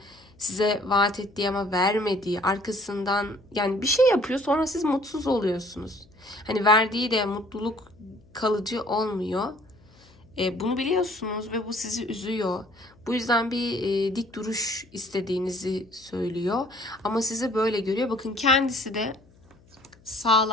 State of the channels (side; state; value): left; noise; hum, 28 dB below the sound